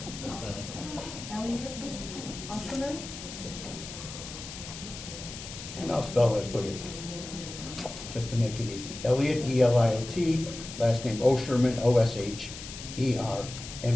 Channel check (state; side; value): noise; left; hiss, 11 dB below the sound